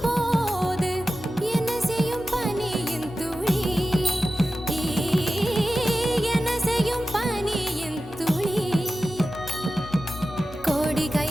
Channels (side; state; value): both; normal; correlation 0.94